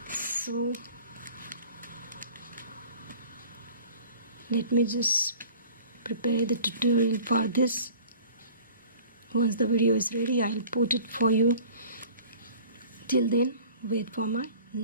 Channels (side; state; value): both; inverted; correlation -0.46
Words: So let me just prepare the tutorial for this. Once the video is ready, I'll put it for you. Till then, wait for my